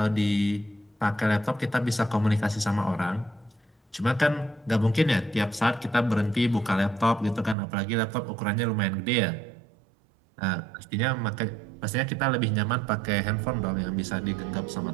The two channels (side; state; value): left; drops out; at 7.6 s